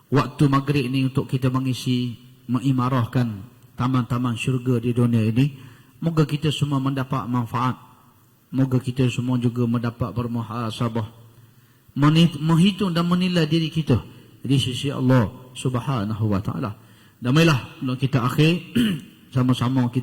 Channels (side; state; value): both; identical; correlation 1.00